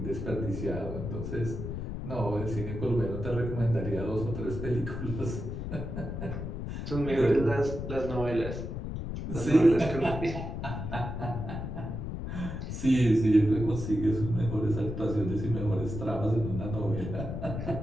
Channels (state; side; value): noise; left; rumble, 5 dB below the sound